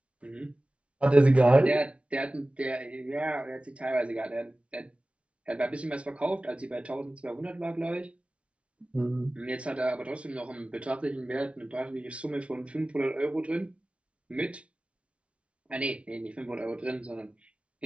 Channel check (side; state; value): left; late; 0.061 ms